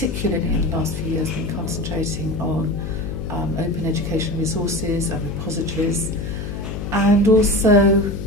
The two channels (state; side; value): noise; left; hum, 6 dB below the sound